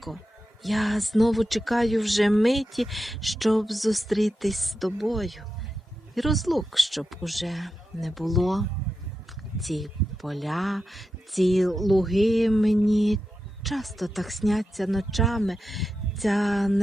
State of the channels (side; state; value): both; normal; correlation 0.89